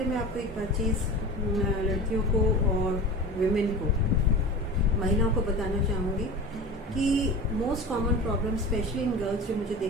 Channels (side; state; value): both; normal; correlation 0.34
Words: मैं आपको एक बात चीज़ लड़कियों को और विमेन को, महिलाओं को बताना चाहूँगी कि most common problem specially in girls जो मुझे